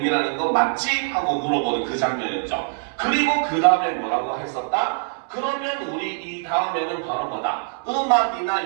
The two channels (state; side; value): silent; left; 63 dB below the other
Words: 거 맞지? 하고 물어보는 그 장면이었죠. 그리고 그 다음에 뭐라고 했었다? 그러면 우리 이 다음에는 바로 뭐다?